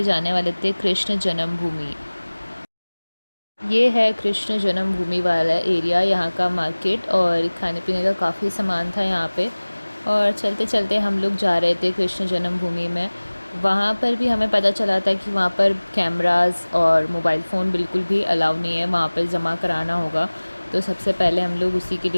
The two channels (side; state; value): both; inverted; correlation -1.00